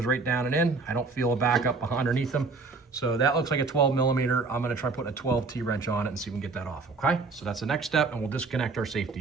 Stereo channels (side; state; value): left; quieter; 4.1 dB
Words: right down and in. I don't feel a backup underneath them. So that looks like a 12 millimeter. I'm gonna try putting a 12 T-wrench on it and see if we can get that off, okay? So that's the next step, and we'll disconnect our